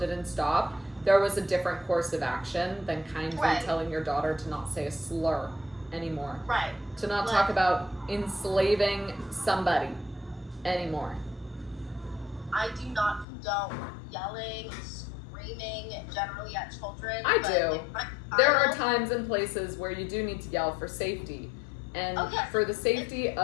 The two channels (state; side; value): drops out; right; at 13.2 s